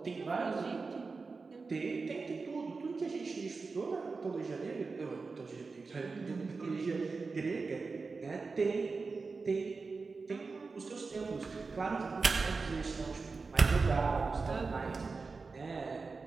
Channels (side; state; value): left; quieter; 4.3 dB